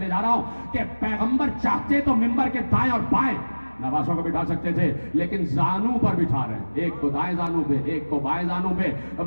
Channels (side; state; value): both; inverted; correlation -1.00